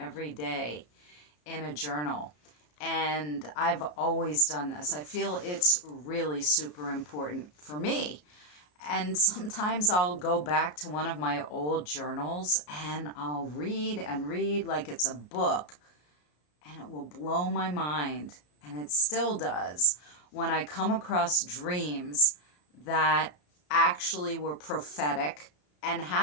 day in a journal, and I've always done this. I feel it's really super important for me. And sometimes I'll go back to one of my old journals and I'll read and read like it's a book, and it will blow my mind, and it still does, when I come across dreams that actually were prophetic and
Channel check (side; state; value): right; late; 33 ms